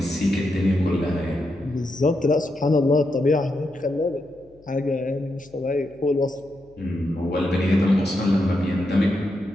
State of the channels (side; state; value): left; noise; hum, 29 dB below the sound